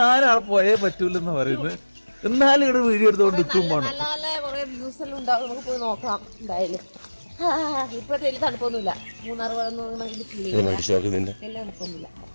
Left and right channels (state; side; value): inverted; both; correlation -1.00